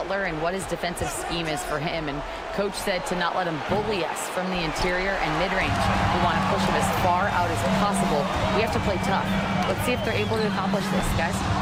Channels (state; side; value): identical; both; correlation 1.00